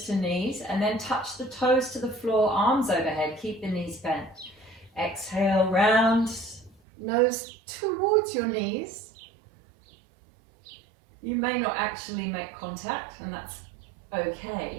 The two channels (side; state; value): left; drops out; at 6.8 s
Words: to knees, and then touch the toes to the floor, arms overhead, keep the knees bent. Exhale, round, nose towards your knees. You may not actually make contact, and that's